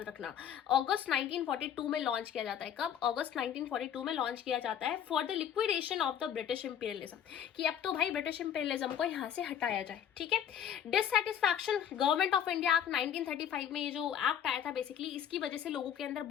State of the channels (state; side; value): quieter; right; 9.2 dB